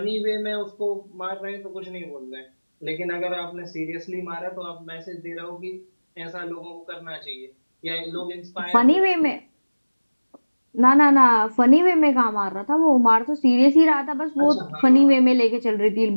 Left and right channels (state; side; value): inverted; both; correlation -1.00